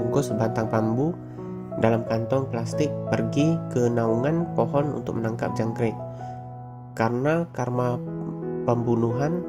sebatang bambu dalam kantong plastik pergi ke naungan pohon untuk menangkap jangkrik. Karena karma pembunuhan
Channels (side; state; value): both; identical; correlation 1.00